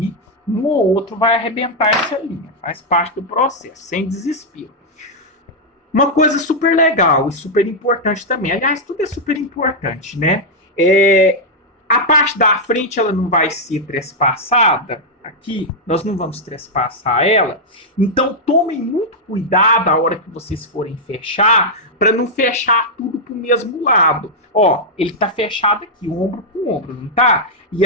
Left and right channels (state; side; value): normal; both; correlation -0.04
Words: um ou outro vai arrebentar essa linha. Faz parte do processo, sem desespero. Uma coisa super legal e super importante também. Aliás, tudo é super importante, né? A parte da frente ela não vai ser trespassada. Aqui, nós não vamos trespassar ela. Então, tomem muito cuidado a hora que vocês forem fechar, para não fechar tudo para o mesmo lado. Ó, ele está fechado aqui, ombro com ombro, não tá? E